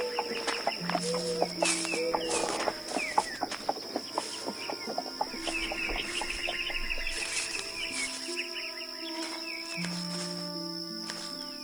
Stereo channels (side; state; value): right; noise; hiss, 20 dB below the sound